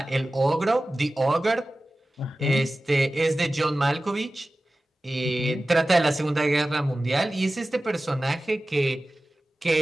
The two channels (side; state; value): both; normal; correlation 0.96